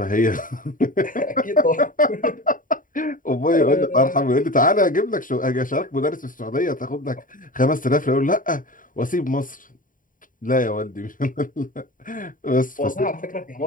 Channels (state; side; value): late; right; 0.39 ms